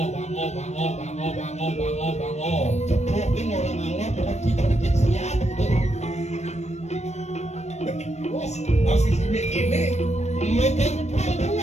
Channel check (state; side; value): late; right; 0.32 ms